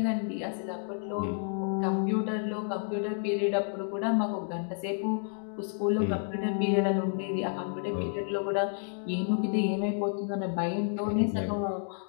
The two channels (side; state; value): right; silent; 58 dB below the other